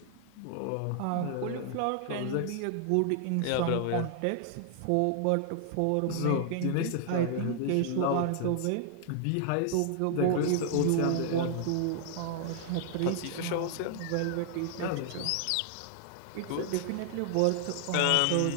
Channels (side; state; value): both; different; correlation -0.01